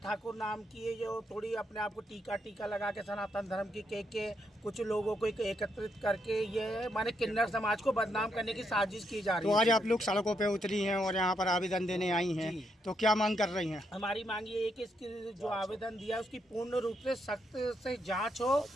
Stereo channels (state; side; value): normal; both; correlation 0.78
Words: नाम की है, जो थोड़ी अपने आप को टीका लगा के सनातन धर्म की के कुछ लोगों को एकत्रित करके ये माने किन्नर समाज को बदनाम करने की साजिश की जा रही है। तो आज आप लोग सड़कों पे उतरी हैं और यहाँ पर आवेदन देने आई हैं, तो क्या मांग कर रही हैं? हमारी मांग ये है कि इसकी जो आवेदन दिया है उसकी पूर्ण रूप से सख्त से जांच हो